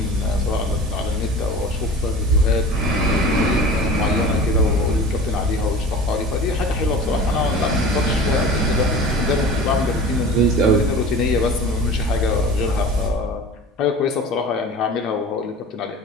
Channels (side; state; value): both; normal; correlation 0.38